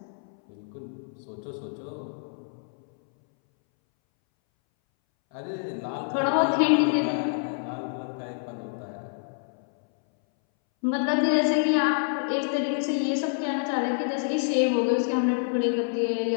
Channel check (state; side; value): silent; right; 60 dB below the other